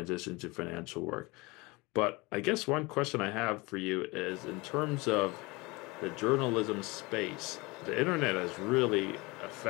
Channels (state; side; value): quieter; right; 24.4 dB